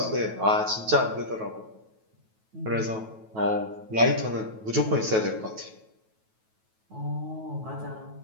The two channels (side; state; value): left; late; 9.2 ms